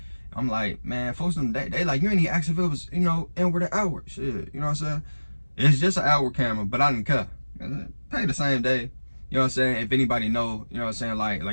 I'm like, man, folks, they like, you ain't even asked if it was, you know, in with the hour. Shit, you know what I'm saying? It's just an hour camera, but I didn't care. Pay the same day. You know what I'm saying? If anybody know, you know what I'm saying? Like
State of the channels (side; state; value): both; inverted; correlation -1.00